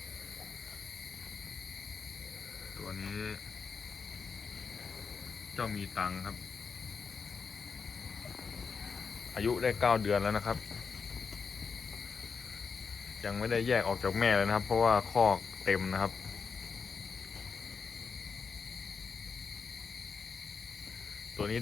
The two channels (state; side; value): quieter; right; 5.5 dB